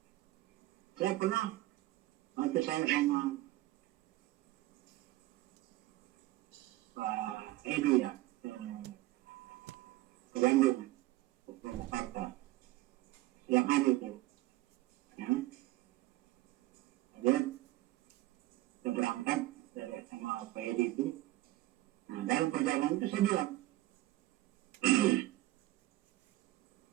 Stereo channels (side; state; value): left; quieter; 17.4 dB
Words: saya pernah waktu saya sama Pak Edi ya, ke Bandung, ke Purwakarta, yang hari itu, ya, dia berangkat dari sama Pak Edi itu. Nah, dalam perjalanan itu saya bilang,